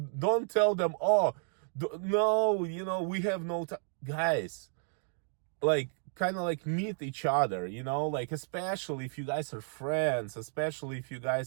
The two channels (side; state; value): left; silent; 56 dB below the other